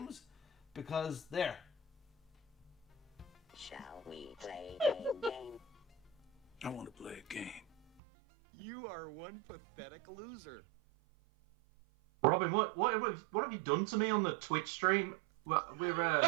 because there. Shall we play a game? I want to play a game. You are one pathetic loser. Robin, what have you done to me on the Twitch stream?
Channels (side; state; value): left; drops out; at 7.9 s